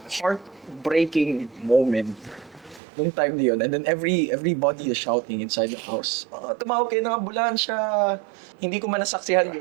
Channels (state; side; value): drops out; left; at 2.8 s